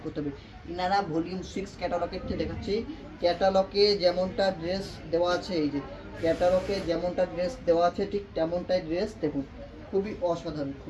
করতে হবে। ইনারা ভলিউম 6 ক্যাটালগের থেকে দেখাচ্ছি। ক্যাটালগে যেমনটা ড্রেস দেওয়া আছে, এই যে ক্যাটালগে যেমনটা ড্রেস দেওয়া আছে ঠিক তেমনটাই ড্রেস দেখুন। খুবই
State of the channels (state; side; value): identical; both; correlation 1.00